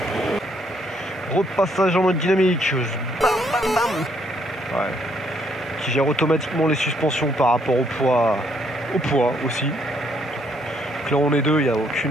Repassage en mode dynamique. Bam, bam, bam. Ouais. Qui gère automatiquement les suspensions par rapport au poids aussi. Donc là on est deux, il n'y a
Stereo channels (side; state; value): both; normal; correlation 0.69